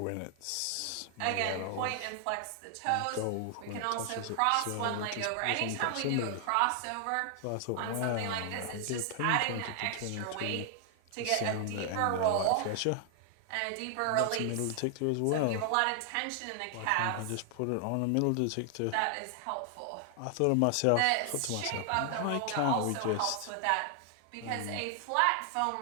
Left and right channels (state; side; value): different; both; correlation 0.00